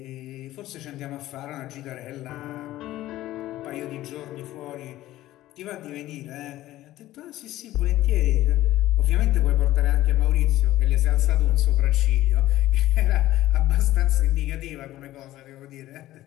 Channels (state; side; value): quieter; right; 15.3 dB